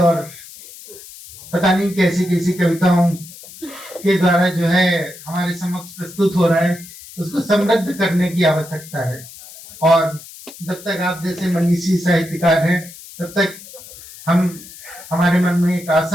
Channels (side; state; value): left; noise; hiss, 17 dB below the sound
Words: पता नहीं कैसी कैसी कविताओं के द्वारा जो है हमारे समक्ष प्रस्तुत हो रहा है, उसको समृद्ध करने की आवश्यकता है। और जब तक आप जैसे मनीषी साहित्यकार हैं, तब तक हमारे मन में एक